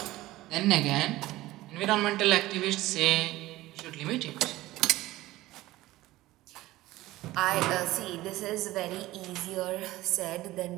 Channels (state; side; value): quieter; left; 17.3 dB